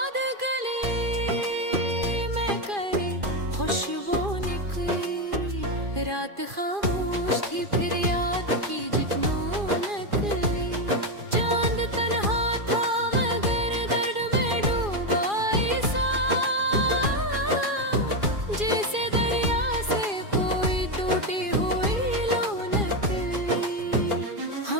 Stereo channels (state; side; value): late; left; 2.4 ms